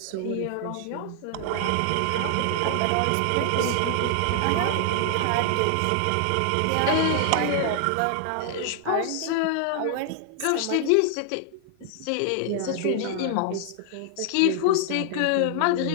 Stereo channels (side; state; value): both; different; correlation 0.00